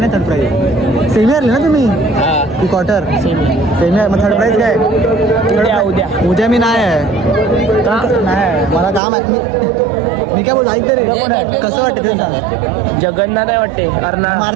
थर्ड प्राइज सेमी हरले ना तुम्ही की क्वार्टर. सेमी मग थर्ड प्राइज काय. उद्या मी नाही आहे. मला काम आहे. मी काय बोल ऐक तरी कसं वाटतं ते सांग. जगन्नाथ आहे वाटते.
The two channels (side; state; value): left; drops out; at 9.0 s